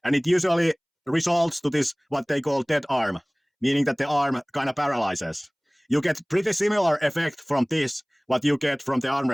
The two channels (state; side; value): identical; both; correlation 1.00